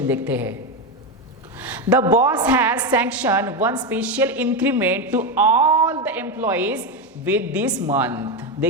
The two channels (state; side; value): normal; both; correlation 0.12